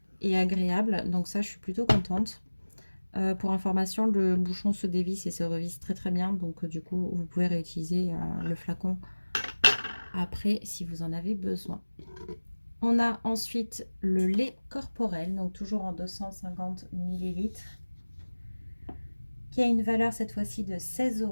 et agréable. Donc ça, je suis plutôt contente. Pour information, le bouchon se dévisse et se revisse très très bien, donc du coup vous pouvez réutiliser le flacon après si vous en avez besoin. On a ensuite le lait corporel, donc toujours en 250 ml, qui a une valeur cette fois-ci de 16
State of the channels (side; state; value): both; inverted; correlation -1.00